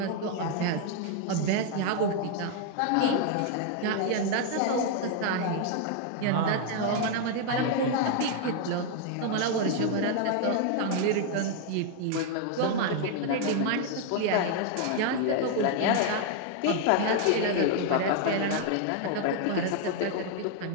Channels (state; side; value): different; both; correlation 0.00